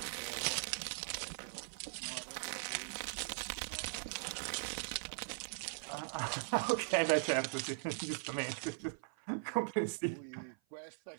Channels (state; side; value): silent; left; 51 dB below the other